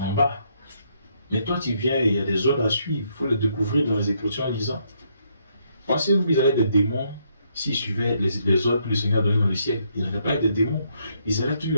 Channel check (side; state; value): both; inverted; correlation -0.73